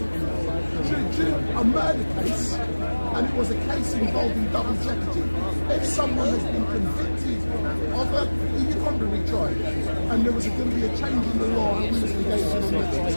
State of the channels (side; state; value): both; inverted; correlation -1.00